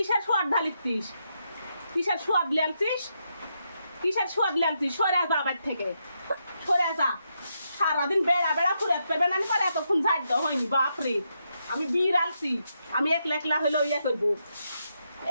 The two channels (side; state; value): both; inverted; correlation -0.81